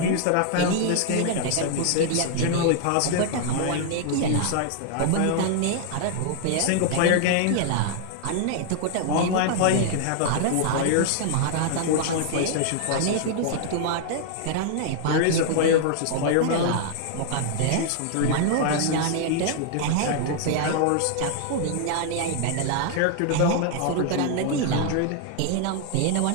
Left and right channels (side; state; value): both; different; correlation 0.00